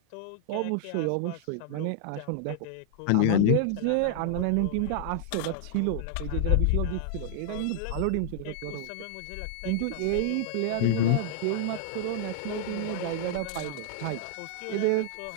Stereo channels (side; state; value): both; different; correlation -0.01